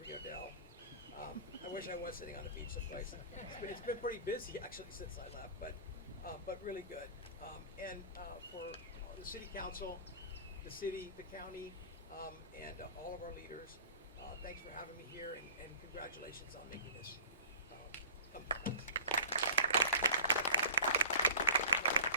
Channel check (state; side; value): inverted; both; correlation -0.37